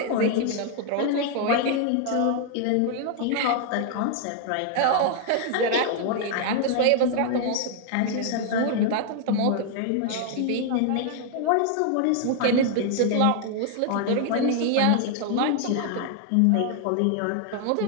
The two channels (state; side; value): different; both; correlation 0.00